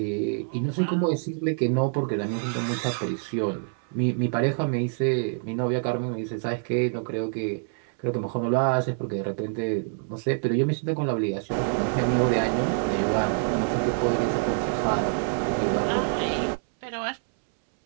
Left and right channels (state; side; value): silent; left; 61 dB below the other